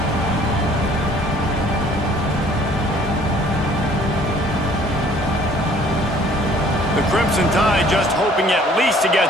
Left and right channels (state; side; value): normal; both; correlation 0.56